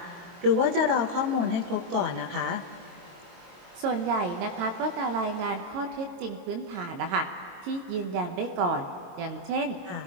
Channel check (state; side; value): late; left; 22 ms